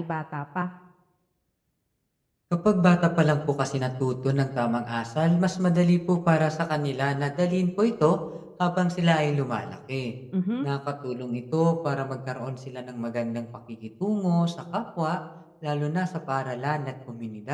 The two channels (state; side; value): identical; both; correlation 1.00